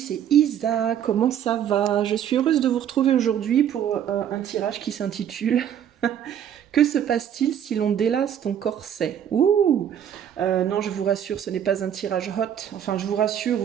Isa, comment ça va? Je suis heureuse de vous retrouver aujourd'hui pour un tirage qui s'intitule Que se passe-t-il si l'on délace ton corset? Ouh! Non, je vous rassure, ce n'est pas un tirage hot. Enfin, je vous rassure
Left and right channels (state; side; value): quieter; left; 9.5 dB